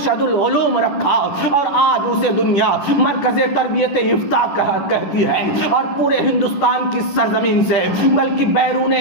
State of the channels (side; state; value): right; late; 10 ms